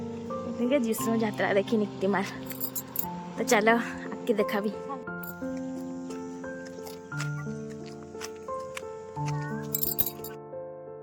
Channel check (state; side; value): identical; both; correlation 1.00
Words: जीशु यात्रा देखी निक्तिमाल। तो चलो आके देखा भी।